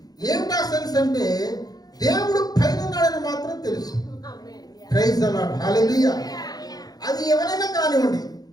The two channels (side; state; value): right; late; 0.19 ms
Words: ఏమిటా సెన్స్ అంటే దేవుడు పైన ఉన్నాడని మాత్రం తెలుసు. Praise the lord. హల్లెలూయా. అది ఎవరైనా కానివ్వండి,